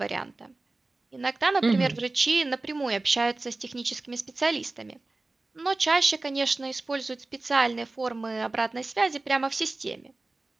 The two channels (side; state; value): left; quieter; 3.2 dB